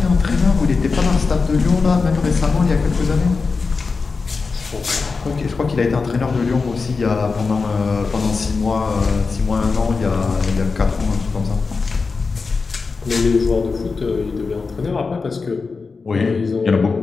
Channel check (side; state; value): right; quieter; 4.5 dB